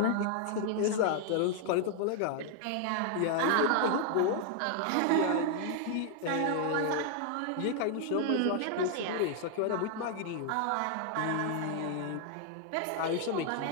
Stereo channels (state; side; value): different; both; correlation 0.00